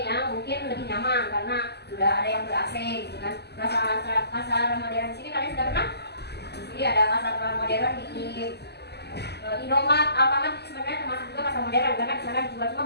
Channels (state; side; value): late; right; 0.49 ms